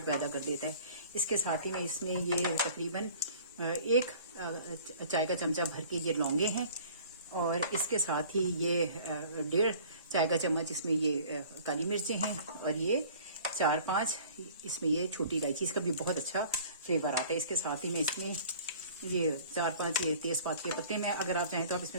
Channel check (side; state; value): both; inverted; correlation -0.49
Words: पैदा कर देता है। इसके साथ ही मैं इसमें ये तकरीबन 1 चाय का चमचा भर के ये लौंगे हैं, और इसके साथ ही ये 1.5 चाय का चम्मच इसमें ये काली मिर्चें हैं, और ये 4-5 इसमें ये छोटी इलायची, इसका भी बहुत अच्छा फ्लेवर आता है। इसके साथ ही मैं इसमें ये 4-5 ये तेज़पात के पत्ते में, अगर आप चाहें तो आप